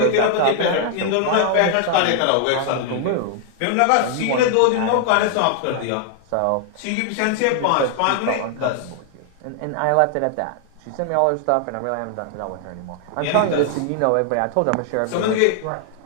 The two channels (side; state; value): both; different; correlation 0.00